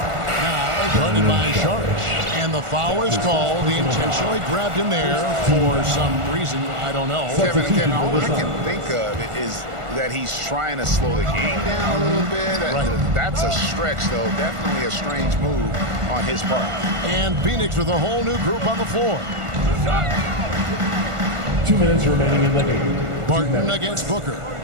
guarded by Sharch. And the foul is called. He intentionally grabbed him there for some reason. I don't know. Kevin, all I can think of is that he's trying to slow the game down a little bit. Right. That's a stretch, though. Definitely a strange move on his part. And Phoenix with a whole new group on the floor. 2 minutes remaining in the game. Barton against Booker.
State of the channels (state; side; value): late; left; 1.4 ms